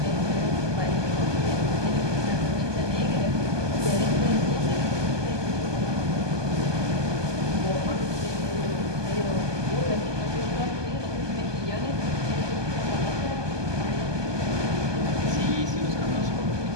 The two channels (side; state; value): left; late; 1.2 ms